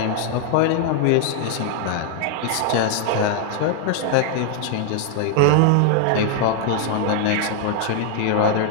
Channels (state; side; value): different; both; correlation 0.00